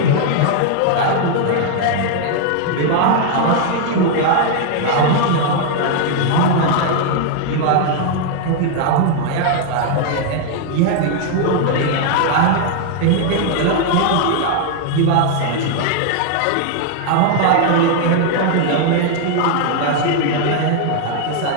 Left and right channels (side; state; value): both; different; correlation 0.00